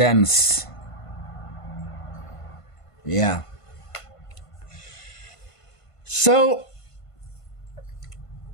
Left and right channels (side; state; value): right; late; 1.5 ms